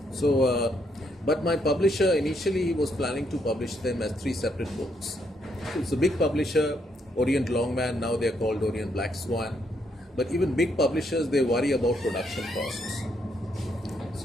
So, but my publisher initially was planning to publish them as three separate books. So it's a big publisher, Orient Longman, now they're called Orient Black Swan. But even big publishers, they worry about production costs.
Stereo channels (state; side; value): normal; both; correlation 0.74